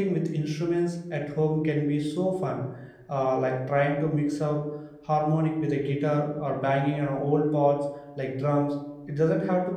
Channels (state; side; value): identical; both; correlation 1.00